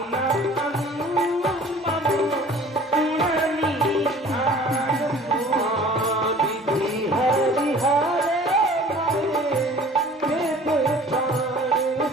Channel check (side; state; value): both; normal; correlation 0.48